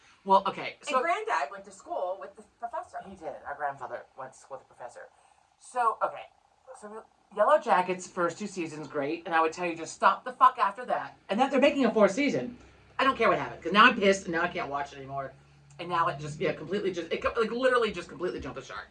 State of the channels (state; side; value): identical; both; correlation 1.00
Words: Well, okay. So and Granddad went to school with the professor. He did. Our grandfather went to school with the professor. So okay, so Yellow Jackets first 2 seasons great, and I would tell you just stop the fuck after that. And then they're making a 4th season. I don't care what happened because now I'm pissed and now I can't watch it anymore. And now it just completely literally just completely jumped the shark.